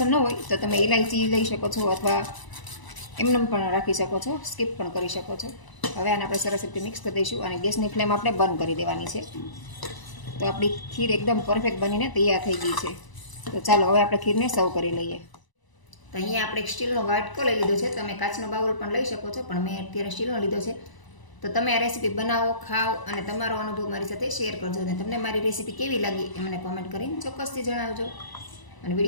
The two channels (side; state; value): right; late; 1.0 ms